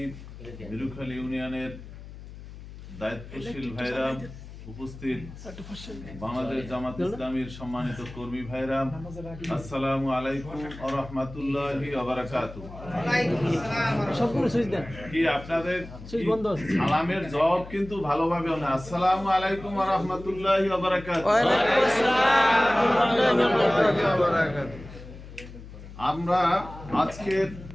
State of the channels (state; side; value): noise; left; hum, 15 dB below the sound